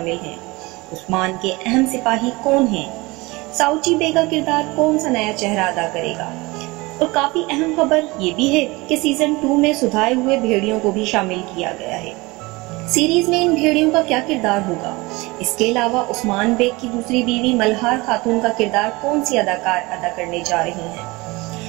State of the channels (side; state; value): left; quieter; 23.3 dB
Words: ہیں، عثمان کے اہم سپاہی کون ہیں، ساؤچی بے کا کردار کون سا نیا چہرہ ادا کرے گا، اور کافی اہم خبر یہ بھی ہے کہ سیزن 2 میں سدھائے ہوئے بھیڑیوں کو بھی شامل کیا گیا ہے۔ سیریز میں ان بھیڑیوں کا کیا کردار ہوگا؟ اس کے علاوہ عثمان بیگ کی دوسری بیوی ملہار خاتون کا کردار کون سی اداکار ادا کرنے جا رہی ہیں؟